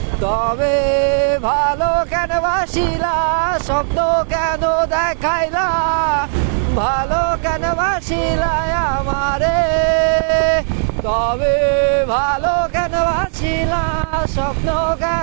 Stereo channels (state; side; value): silent; left; 68 dB below the other